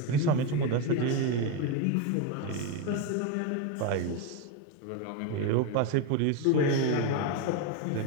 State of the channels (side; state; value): both; different; correlation 0.03